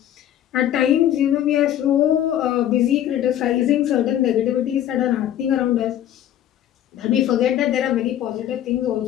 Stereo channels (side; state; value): right; quieter; 11.4 dB